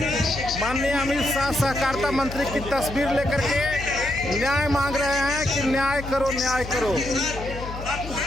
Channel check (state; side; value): noise; left; hum, 9 dB below the sound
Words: माननीय अमित शाह सहकारिता मंत्री की तस्वीर लेकर के न्याय मांग रहे हैं कि न्याय करो, न्याय करो।